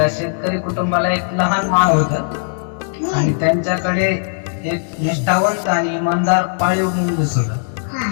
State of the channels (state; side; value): silent; right; digital silence